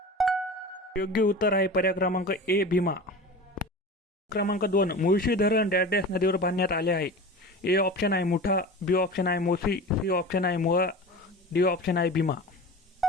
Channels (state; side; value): normal; both; correlation 0.33